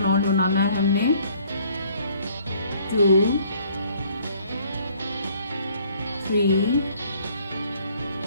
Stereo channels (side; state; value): both; inverted; correlation -0.60